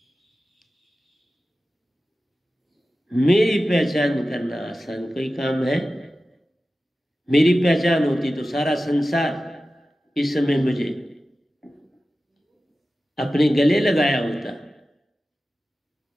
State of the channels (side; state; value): both; normal; correlation 0.94